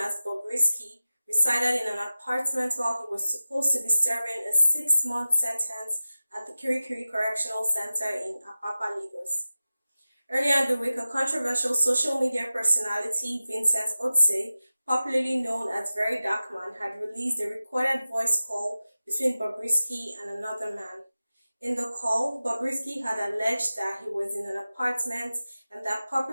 as Bobrisky, resided in an apartment while he was supposed to be serving a 6-month sentence at the Kirikiri Correctional Center in Apapa, Lagos. Earlier in the week, a controversial social media personality, Vincent Otse, popularly known as VeryDarkMan, had released a recorded voice call between Bobrisky and another man. In the call, Bobrisky had alleged that he was in an apartment and that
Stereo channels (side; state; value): both; inverted; correlation -0.96